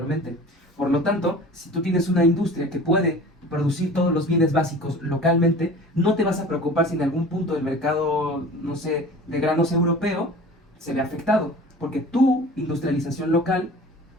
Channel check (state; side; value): normal; both; correlation 0.41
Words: Por lo tanto, si tú tienes una industria que puede producir todos los bienes básicos localmente, no te vas a preocupar si en algún punto el mercado, no sé, de granos europeo se ve afectado, porque tu industrialización local